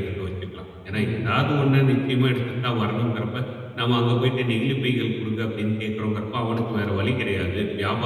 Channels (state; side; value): identical; both; correlation 1.00